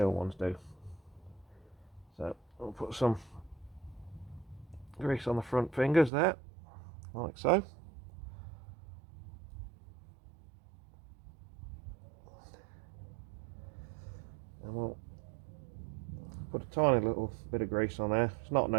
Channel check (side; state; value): left; drops out; at 6.1 s